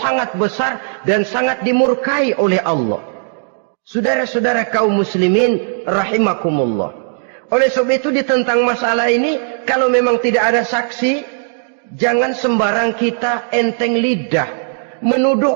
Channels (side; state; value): left; silent; 64 dB below the other